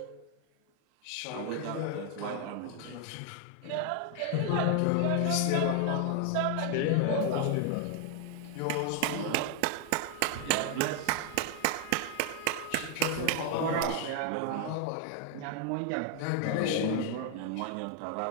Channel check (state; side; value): different; both; correlation 0.00